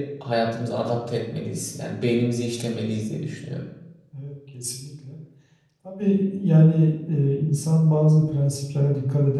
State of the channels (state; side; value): identical; both; correlation 1.00